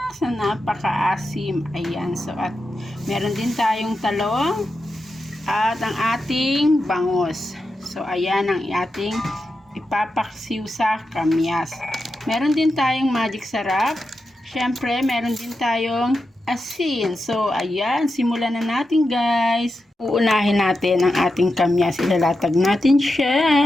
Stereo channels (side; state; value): both; normal; correlation 0.89